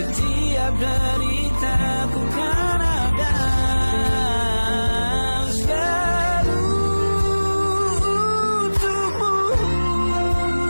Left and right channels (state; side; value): inverted; both; correlation -1.00